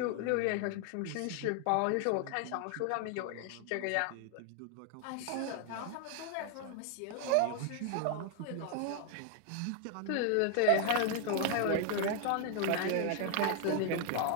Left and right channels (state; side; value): different; both; correlation 0.01